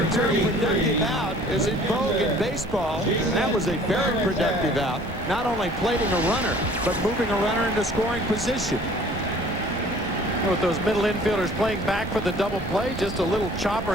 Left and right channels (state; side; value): normal; both; correlation 0.52